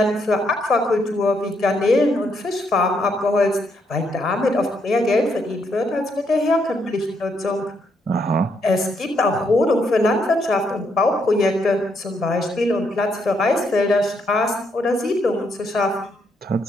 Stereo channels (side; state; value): both; normal; correlation 0.75